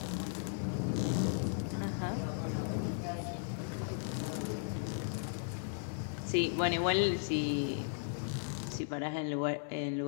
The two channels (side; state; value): right; silent; digital silence